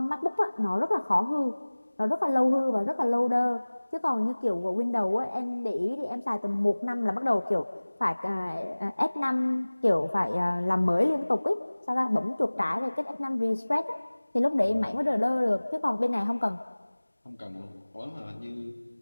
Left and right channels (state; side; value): inverted; both; correlation -1.00